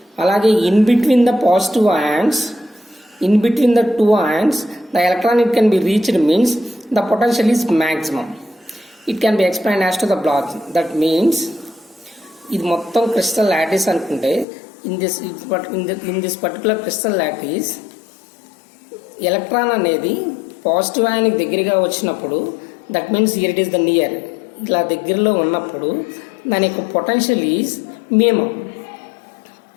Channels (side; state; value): right; drops out; at 14.5 s